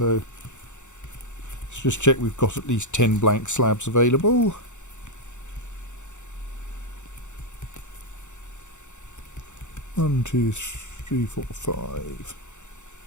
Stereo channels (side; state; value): right; late; 0.84 ms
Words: let's just check we've got at least 10 blank slabs available. One, 2, 3, 4, 5,